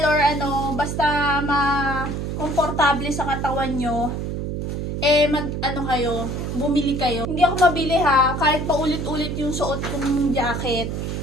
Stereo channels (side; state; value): right; noise; hum, 3 dB below the sound